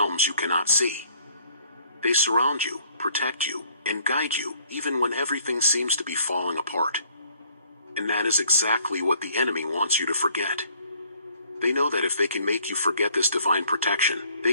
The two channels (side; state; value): both; inverted; correlation -0.61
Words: you cannot see. They surround you, protect you, and guide you, even when everything seems to be falling apart. And that is exactly what the enemy wants you to forget. They know that if they can make you forget this divine protection, they